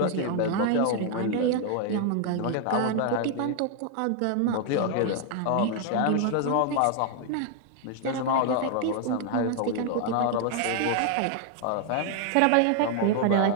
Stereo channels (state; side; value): different; both; correlation 0.00